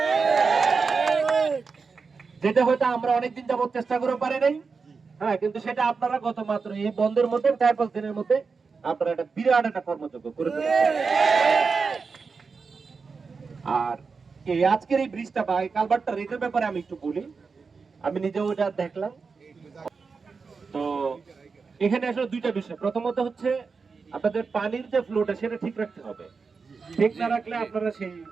যেটা হয়তো আমরা অনেকদিন যাবত চেষ্টা করে পারি নাই। হ্যাঁ, কিন্তু সেটা আপনারা গত মাত্র এই বন্ধের মধ্যে 4-5 দিনের মধ্যে আপনারা একটা বিরাট একটা কর্মযোগ্য করে ফেলেছেন। আর এই আজকের এই ব্রিজটা বা এই কালভার্টটা রেটের ব্যাপারে আমি একটু বলি। আমি নিজেও এটা দেখলাম। তো এখানে আসলে দুইটা বিষয়। প্রথমত হচ্ছে আপনাদের পানির যে ফ্লোটা সেটা ঠিক রাখতে হবে। ঠিক না রাখলে আপনারা সেই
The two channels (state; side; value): quieter; left; 4.9 dB